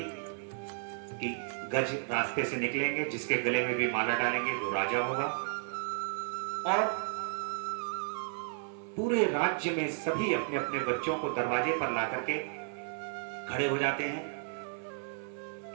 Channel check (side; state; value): left; silent; 56 dB below the other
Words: कि गज रास्ते से निकलेंगे, जिसके गले में भी माला डालेंगे वो राजा होगा। और पूरे राज्य में सभी अपने अपने बच्चों को दरवाजे पर ला करके खड़े हो जाते हैं